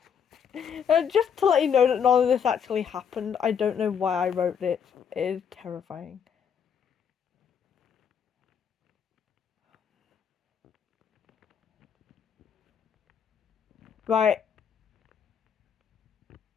Just to let you know that none of this actually happened. I don't know why I wrote it. It is terrifying. Right.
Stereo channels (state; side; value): quieter; right; 7.5 dB